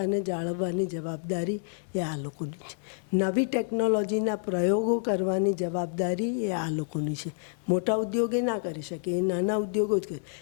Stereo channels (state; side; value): silent; right; 59 dB below the other